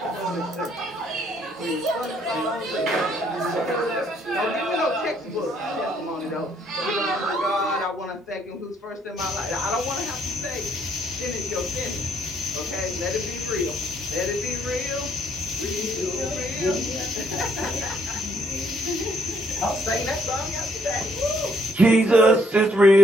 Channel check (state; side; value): normal; both; correlation 0.69